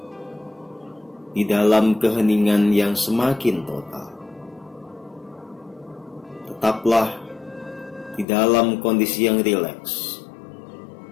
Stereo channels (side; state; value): right; drops out; at 8.2 s